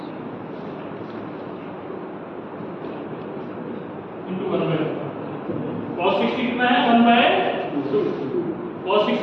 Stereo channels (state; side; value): identical; both; correlation 1.00